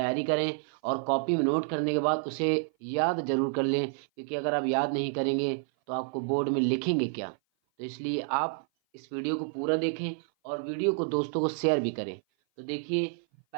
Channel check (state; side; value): silent; left; 56 dB below the other